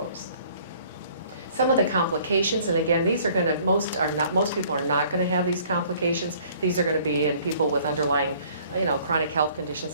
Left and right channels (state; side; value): inverted; both; correlation -0.56